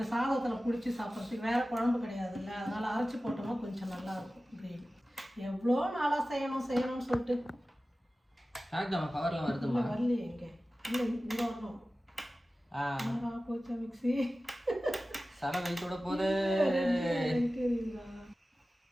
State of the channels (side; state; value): both; normal; correlation 0.96